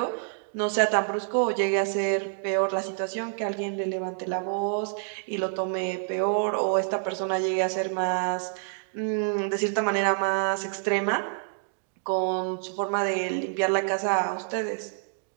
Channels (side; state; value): left; silent; digital silence